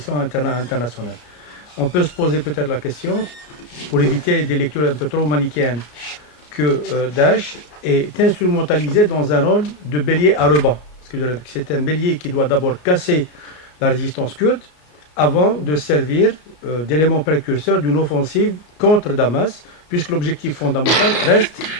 On peut se poser peut-être la question, pour éviter des lectures un peu trop manichéennes, que Daesh est instrumentalisé dans un rôle de bélier à ruban. C'est un bélier qui doit d'abord casser la résistance kurde avant de servir d'élément précurseur d'une offensive contre Damas, puisque l'objectif fondamental reste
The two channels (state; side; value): late; right; 33 ms